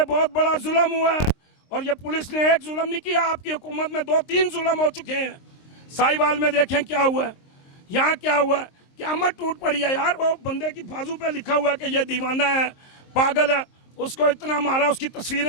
बहुत बड़ा जुल्म हुआ है। और ये पुलिस ने एक जुल्म नहीं किया, आपकी हुकूमत में 2-3 जुल्म हो चुके हैं। साहिवाल में देखें क्या हुआ है, यहाँ क्या हुआ है, क़यामत टूट पड़ी है यार। वो बंदे की बाजू पे लिखा हुआ है कि ये दीवाना है, पागल है, उसको इतना मारा, उसकी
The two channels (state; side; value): late; right; 23 ms